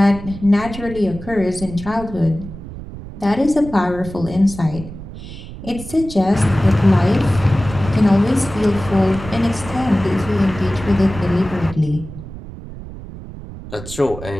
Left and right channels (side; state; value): right; noise; rumble, 13 dB below the sound